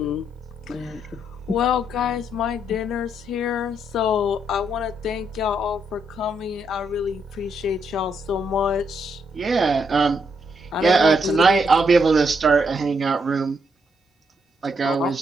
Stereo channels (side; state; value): both; normal; correlation 0.76